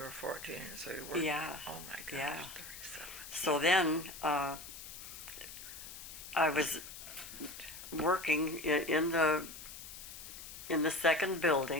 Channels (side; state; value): left; noise; hiss, 12 dB below the sound